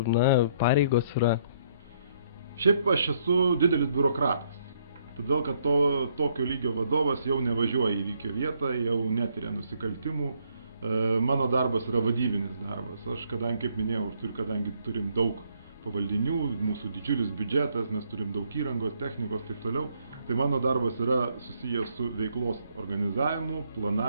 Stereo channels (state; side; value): inverted; both; correlation -0.70